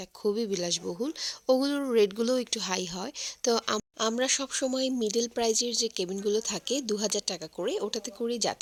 খুবই বিলাসবহুল, ওগুলোর রেটগুলোও একটু হাই হয়। তো আমরা সব সময় মিডল প্রাইজের যে কেবিনগুলো থাকে 2000 টাকা করে, ওটাতে করেই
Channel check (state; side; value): identical; both; correlation 1.00